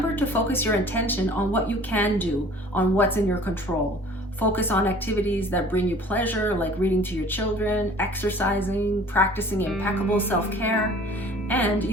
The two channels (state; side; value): normal; both; correlation 0.49